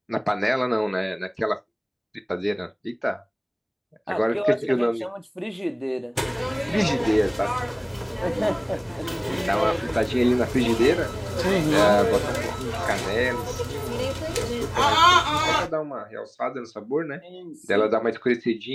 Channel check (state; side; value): identical; both; correlation 1.00